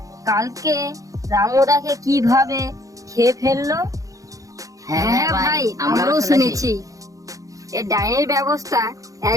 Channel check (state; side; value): late; left; 0.16 ms